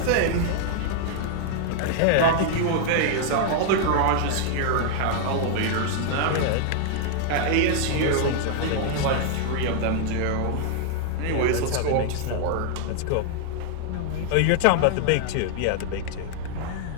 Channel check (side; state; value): both; different; correlation -0.01